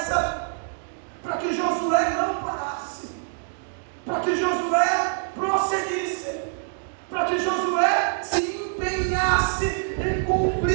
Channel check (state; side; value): silent; left; digital silence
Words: para que Josué não parasse, para que Josué prosseguisse, para que Josué se empenhasse em